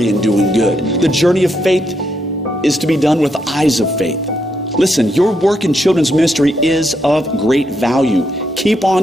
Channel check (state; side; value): normal; both; correlation 0.79